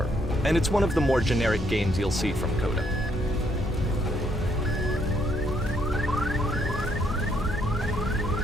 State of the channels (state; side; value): normal; both; correlation 0.72